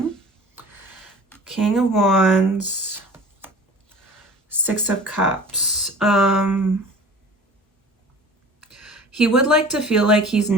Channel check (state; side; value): normal; both; correlation 0.42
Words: King of Wands, Six of Cups. He would like to feel like he's